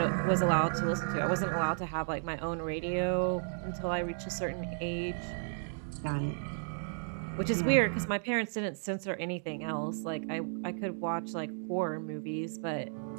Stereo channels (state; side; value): silent; left; digital silence